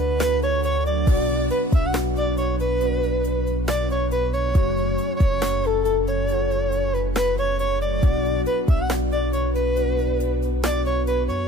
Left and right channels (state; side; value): normal; both; correlation 0.56